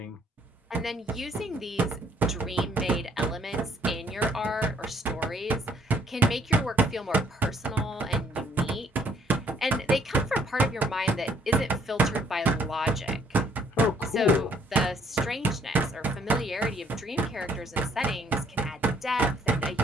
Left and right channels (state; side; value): normal; both; correlation 0.64